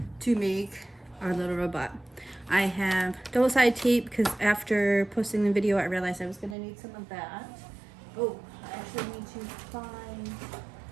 to make our little robot. I have double-sided tape because after posting the video I realized I was going to need some of that. Oh, I actually need to find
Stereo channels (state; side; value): drops out; left; at 6.6 s